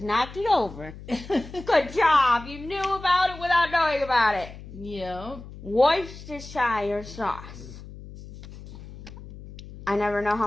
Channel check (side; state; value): left; noise; hum, 15 dB below the sound